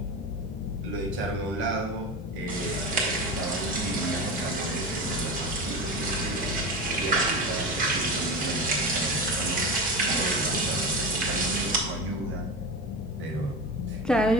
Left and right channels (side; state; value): both; normal; correlation 0.23